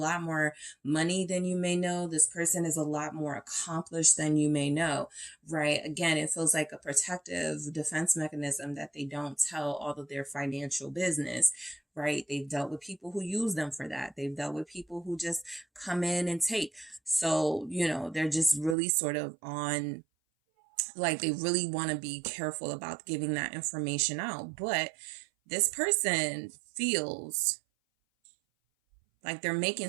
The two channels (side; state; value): left; drops out; at 18.8 s